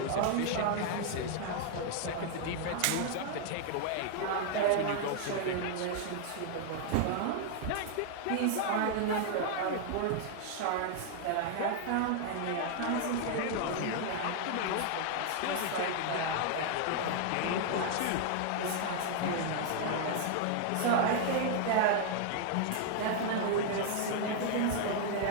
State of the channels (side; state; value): both; different; correlation 0.00